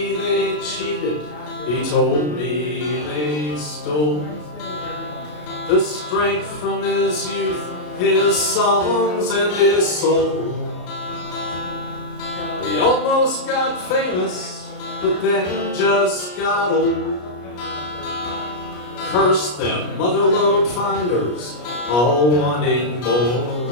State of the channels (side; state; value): right; late; 33 ms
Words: they cheated, he told me they stole the strength from his youth, his songs and his soul. He almost got famous, but then just got old. Curse them motherlode finders, all wanting